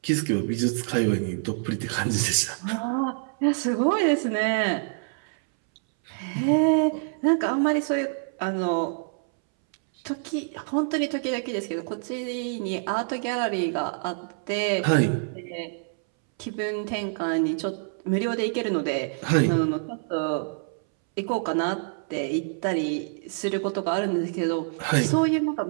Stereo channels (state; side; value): silent; left; 61 dB below the other